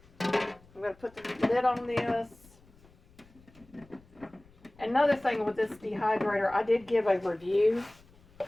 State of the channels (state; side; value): noise; left; rumble, 27 dB below the sound